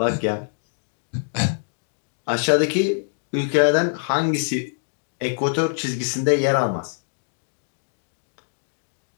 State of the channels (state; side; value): silent; right; digital silence